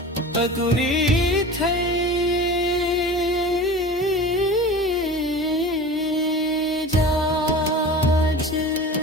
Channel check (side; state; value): both; normal; correlation 0.36